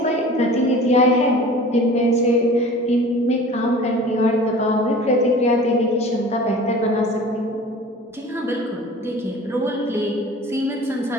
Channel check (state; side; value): normal; both; correlation 0.42